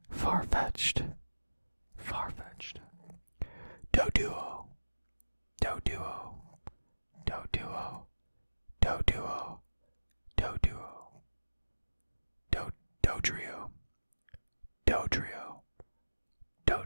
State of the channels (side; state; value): both; inverted; correlation -1.00